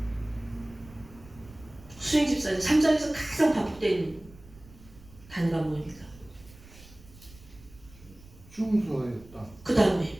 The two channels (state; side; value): noise; right; rumble, 22 dB below the sound